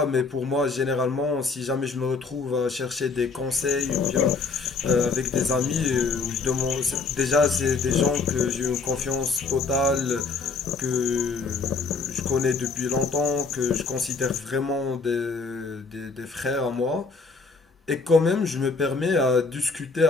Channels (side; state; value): right; quieter; 4.4 dB